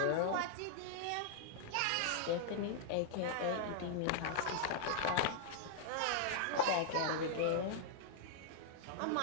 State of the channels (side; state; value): both; different; correlation -0.01